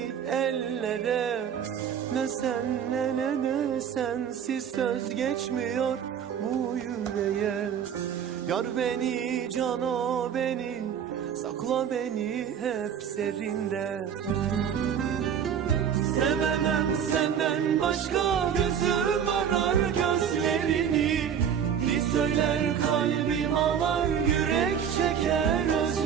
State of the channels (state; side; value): quieter; left; 8.2 dB